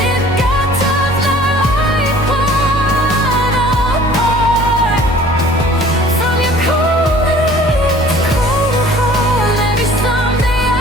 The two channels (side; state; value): both; normal; correlation 0.50